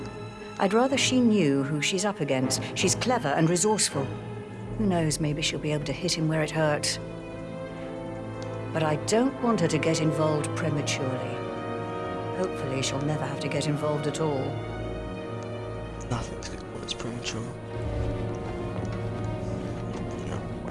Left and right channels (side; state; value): both; identical; correlation 1.00